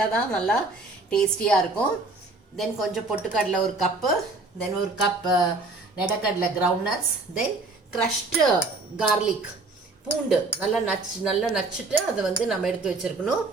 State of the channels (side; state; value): left; quieter; 3.3 dB